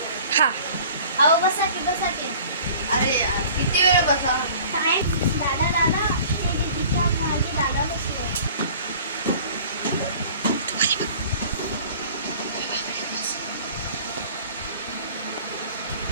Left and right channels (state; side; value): inverted; both; correlation -0.47